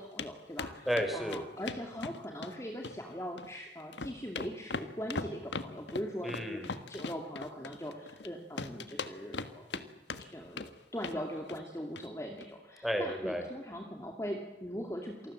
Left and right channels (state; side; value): normal; both; correlation 0.64